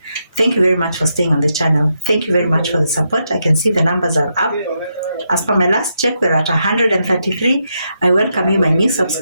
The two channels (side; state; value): both; inverted; correlation -0.82